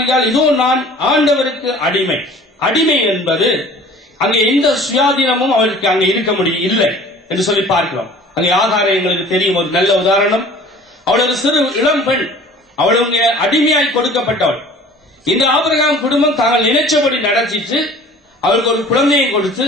இதோ நான் ஆண்டவருக்கு அடிமை. அடிமை என்பது அங்கே எந்த சுயாதீனமும் அவருக்கு அங்கே இருக்க முடியும் இல்லை என்று சொல்லி பார்க்கிறோம். அங்கே ஆகாரம் எங்களுக்கு தெரியும், ஒரு நல்ல உதாரணம். அவள் ஒரு சிறு இளம் பெண், அவள் அடிமையாய் கொடுக்கப்பட்டவள். இந்த ஆபிரகாம் குடும்பம் தாங்கள் நினைச்சபடி நடத்திட்டு அவளுக்கு ஒரு குழந்தையை கொடுத்து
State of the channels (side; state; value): both; normal; correlation 0.47